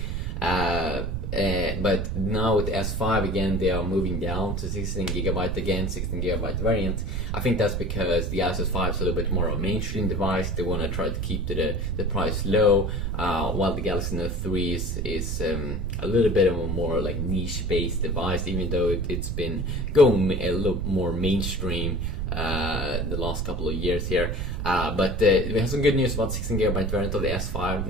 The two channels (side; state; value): right; noise; rumble, 2 dB below the sound